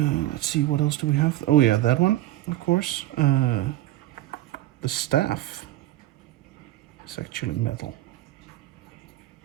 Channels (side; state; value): left; quieter; 15.2 dB